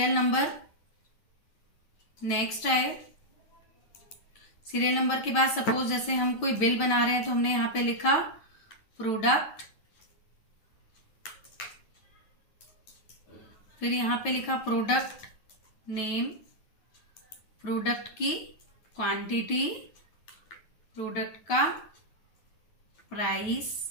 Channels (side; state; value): right; late; 9.4 ms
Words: नंबर, नेक्स्ट आए सीरियल नंबर के बाद सपोज जैसे हम कोई बिल बना रहे हैं तो हमने यहाँ पे लिखा प्रोडक्ट, फिर यहाँ पे लिखा प्रोडक्ट नेम, प्रोडक्ट की क्वांटिटी, प्रोडक्ट का प्राइस